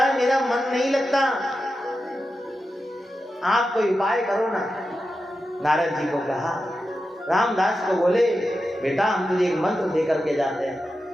मेरा मन नहीं लगता, आप कोई उपाय करो ना। नारद जी को कहा, रामदास को बोले, बेटा हम तुझे एक मंत्र दे करके जाते हैं,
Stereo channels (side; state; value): both; normal; correlation 0.90